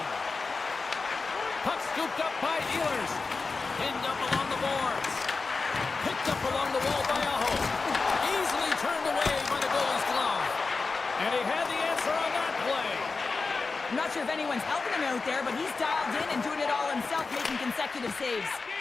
Puck scooped up by Ehlers. Pinned up along the boards. Picked up along the wall by Aho. Easily turned away by the goalie's glove. And he had the answer on that play. I'm not sure if anyone's helping him out there, but he's dialed in and doing it all himself, making consecutive saves.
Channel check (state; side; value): quieter; right; 4.2 dB